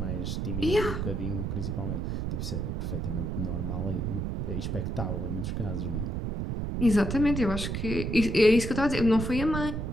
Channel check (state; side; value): noise; right; rumble, 2 dB below the sound